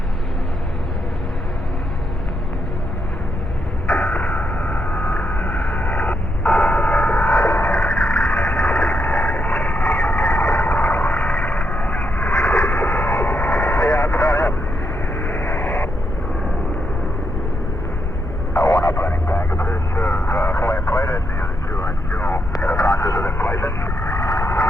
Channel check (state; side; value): normal; both; correlation 0.80